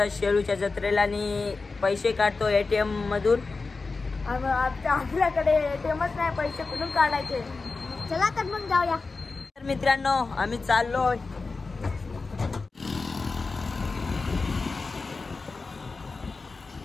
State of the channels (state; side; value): quieter; right; 4.0 dB